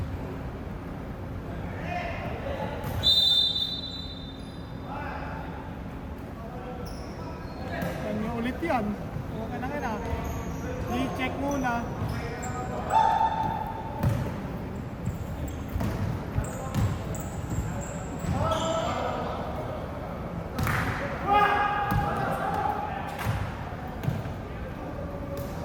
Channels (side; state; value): both; identical; correlation 1.00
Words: Kanya ulit yan. Okay na nga. I-check muna.